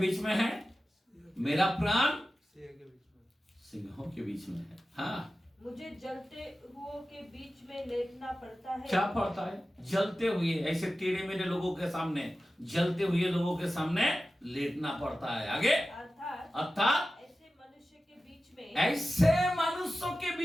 में है? मेरा प्राण सिंहों के बीच में है। हाँ, मुझे जलते हुओं के बीच में लेटना पड़ता है। क्या पड़ता है? जलते हुए, ऐसे टेढ़े मेढ़े लोगों के सामने, जलते हुए लोगों के सामने लेटना पड़ता है। आगे, अर्थात ऐसे मनुष्य के बीच में, ऐसे मनुष्यों के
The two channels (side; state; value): both; normal; correlation 0.94